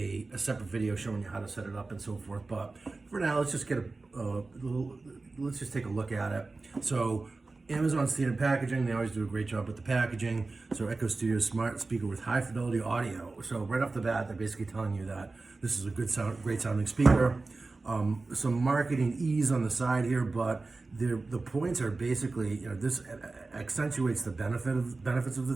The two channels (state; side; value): quieter; left; 3.6 dB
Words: separate video showing you how to set it up and so forth. But for now, let's just get let's just take a look at it. So Amazon standard packaging, they always do a great job with the packaging. So Echo Studio smart speaker with high fidelity audio. So right off the bat, they're basically telling you that this is a great sounding speaker. Some marketing ease on the side here, but the points are basically, this accentuates the benefits of